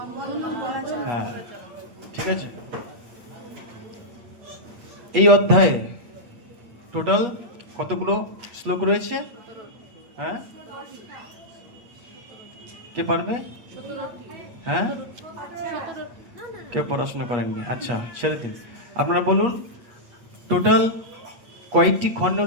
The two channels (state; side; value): late; left; 8.4 ms